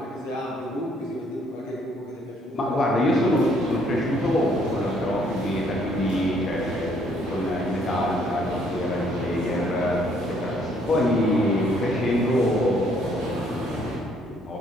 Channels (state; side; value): normal; both; correlation 0.66